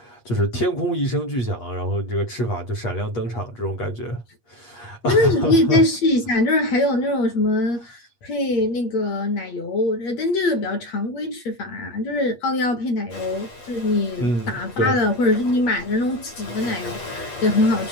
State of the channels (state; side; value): late; right; 8.5 ms